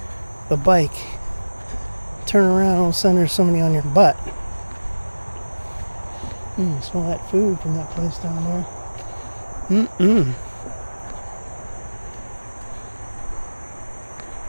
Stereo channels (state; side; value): inverted; both; correlation -1.00